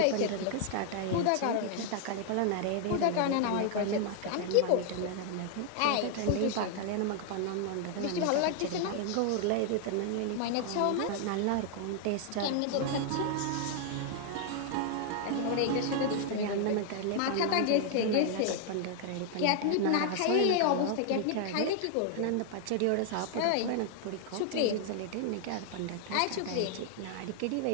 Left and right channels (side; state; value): both; different; correlation 0.00